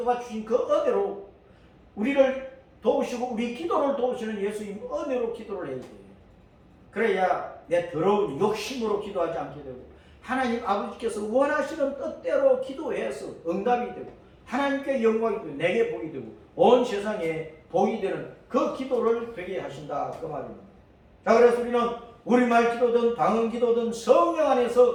그 은혜로 우리를 도우시고 우리 기도를 도우시는 예수님 은혜로 기도를 해야 돼요. 그래야 내 더러운 욕심으로 기도하지 않게 되고 하나님 아버지께서 원하시는 뜻대로 기도해서 응답이 되고 하나님께 영광이 되고 내게 복이 되고 온 세상에 복이 되는 그 기도를 되게 하신다 그 말입니다. 자, 그래서 우리는 우리말 기도든 방언 기도든 성령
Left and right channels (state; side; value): identical; both; correlation 1.00